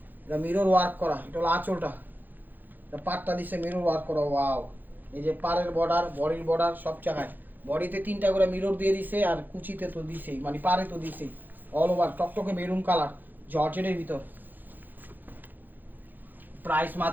এটা মিরর ওয়ার্ক করা। এটা হলো আঁচলটা, এটা পাটটা দিছে মিরর ওয়ার্ক করা। ওয়াও, এই যে পাড়ের বর্ডার, বডির বর্ডার, সব জায়গায় বডিতে 3টা করে মিরর দিয়ে দিছে, আর কুচিতে তো দিছেই, মানে পাড়ে তো দিছেই। অল ওভার টকটকে মেরুন কালার জর্জেটের ভিতর। প্রাইস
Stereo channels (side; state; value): left; late; 0.087 ms